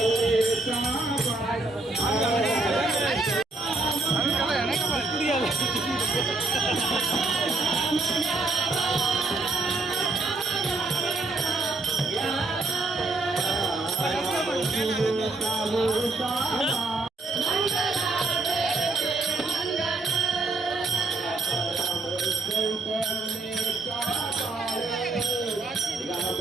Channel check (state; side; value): quieter; left; 3.4 dB